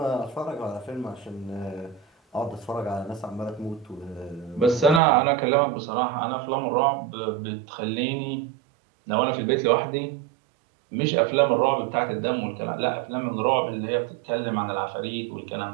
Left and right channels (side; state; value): left; drops out; at 5.0 s